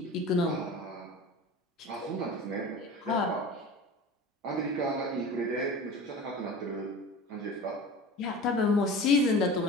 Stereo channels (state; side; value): normal; both; correlation 0.35